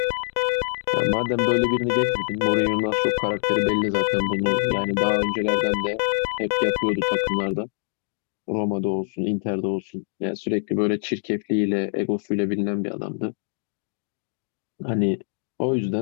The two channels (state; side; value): silent; right; digital silence